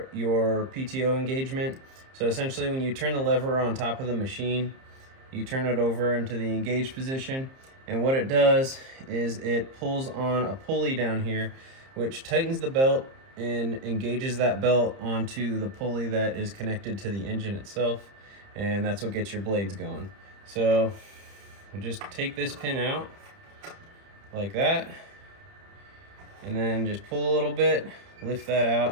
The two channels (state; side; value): late; left; 30 ms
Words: your PTO engagement. So essentially, when you turn the lever on top of the machine, you turn it over into the engaged position. And what it does is it pulls on a pulley down here, which tightens the belt and engages that belt onto the pulley that is connected to the engine itself. And that's what gets your blades going. So we'll just take this pin out like that. And then just pull a little bit, lift that